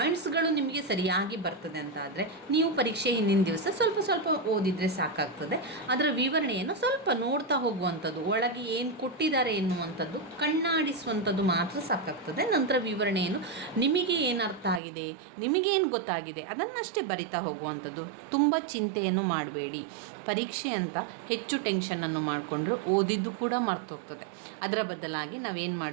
ನಿಮಗೆ ಸರಿಯಾಗಿ ಬರ್ತದೆ ಅಂತಾದರೆ ನೀವು ಪರೀಕ್ಷೆ ಹಿಂದಿನ ದಿವಸ ಸ್ವಲ್ಪ ಓದಿದರೆ ಸಾಕಾಗ್ತದೆ. ಅದರ ವಿವರಣೆಯನ್ನು ಸ್ವಲ್ಪ ನೋಡ್ತಾ ಹೋಗುವಂಥದ್ದು, ಒಳಗೆ ಏನು ಕೊಟ್ಟಿದ್ದಾರೆ ಎನ್ನುವಂಥದ್ದು ಕಣ್ಣಾಡಿಸುವಂಥದ್ದು ಮಾತ್ರ ಸಾಕಾಗ್ತದೆ. ನಂತರ ವಿವರಣೆಯನ್ನು ನಿಮಗೆ ಏನು ಅರ್ಥ ಆಗಿದೆ, ನಿಮಗೇನು ಗೊತ್ತಾಗಿದೆ ಅದನ್ನಷ್ಟೇ ಬರಿತಾ ಹೋಗುವಂಥದ್ದು. ತುಂಬ ಚಿಂತೆಯನ್ನು ಮಾಡಬೇಡಿ. ಪರೀಕ್ಷೆ ಅಂತ ಹೆಚ್ಚು ಟೆನ್ಷನನ್ನು ಮಾಡಿಕೊಂಡ್ರು ಓದಿದ್ದು ಕೂಡ ಮರ್ತೋಗ್ತದೆ. ಅದರ ಬದಲಾಗಿ ನಾವೇನು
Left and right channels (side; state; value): left; drops out; at 14.8 s